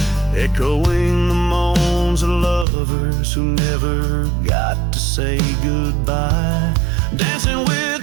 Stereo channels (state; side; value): drops out; left; at 2.7 s